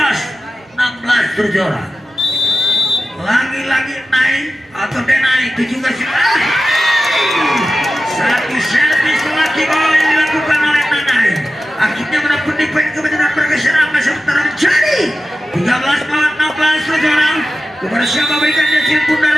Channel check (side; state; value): both; normal; correlation 0.94